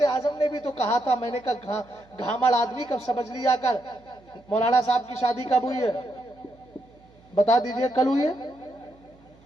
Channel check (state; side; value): noise; right; hum, 28 dB below the sound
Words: اعظم نے بھی تو کہا تھا، میں نے کہا گھامڑ آدمی کب سمجھ لیا کر۔ مولانا صاحب کی شادی کب ہوئی ہے؟ بتا دیجئے، کل ہوئی ہے؟